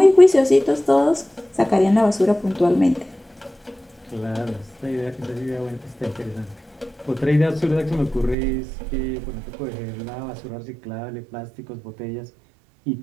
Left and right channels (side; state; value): left; drops out; at 8.3 s